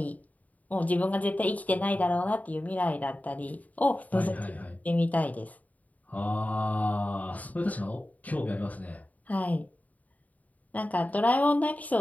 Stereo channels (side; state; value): right; late; 0.073 ms